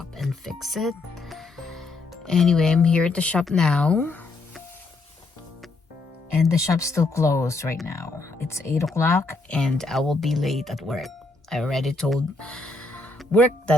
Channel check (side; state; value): right; quieter; 3.4 dB